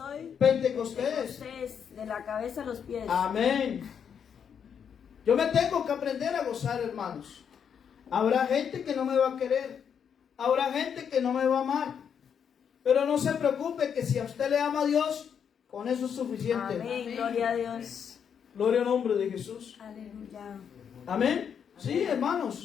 Pentecostés. De la cabeza a los pies. Amén. Yo me tengo que aprender a gozar, hermanos. Habrá gente que no me va a querer. Habrá gente que no me va a amar. Pero no se preocupe, que si a usted le ama a Dios, con eso es suficiente. Amén. Gloria a Dios. Gloria al nombre de Jesús. Aleluya. Amén. Sí,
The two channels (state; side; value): quieter; right; 7.6 dB